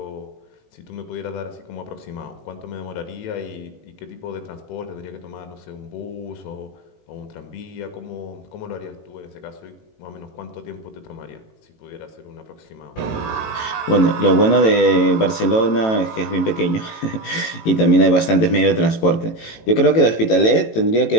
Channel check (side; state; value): right; late; 18 ms